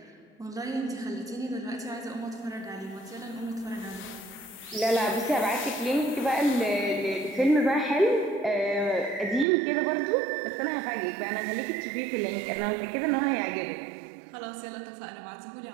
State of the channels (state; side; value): drops out; left; at 9.5 s